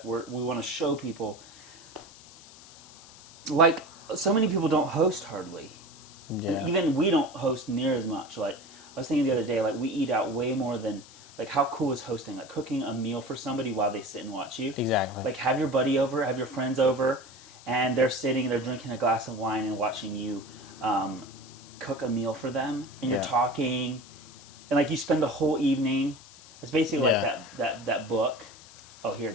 We want to show people. Like so many people don't host hardly. Yeah. And even we don't host near as much. Like I was thinking the other day, like we eat out way more than. Like how cool is hosting? Like cooking a meal for somebody while they sit and watch you. Exactly. Like have your buddy over, have your friends over, and they're sitting, they're drinking a glass of wine and watching you cook a meal for them, and you're talking, and like you spend the whole evening. It's basically like that book. Oh, here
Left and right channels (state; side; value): noise; left; hiss, 20 dB below the sound